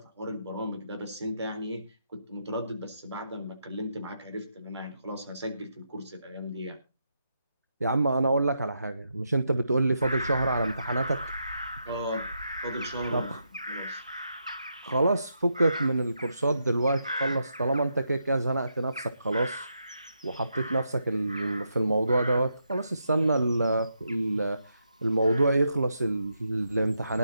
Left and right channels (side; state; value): both; inverted; correlation -0.82